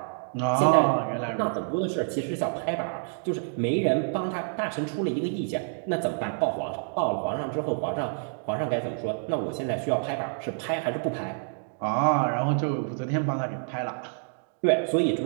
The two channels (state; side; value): silent; left; 60 dB below the other